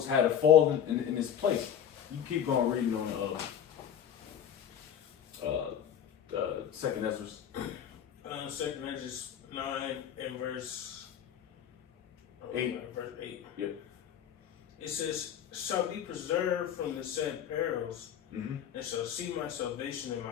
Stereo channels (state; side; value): quieter; right; 9.3 dB